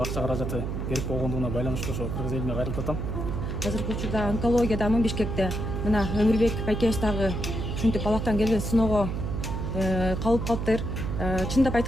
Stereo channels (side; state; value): right; noise; hum, 3 dB below the sound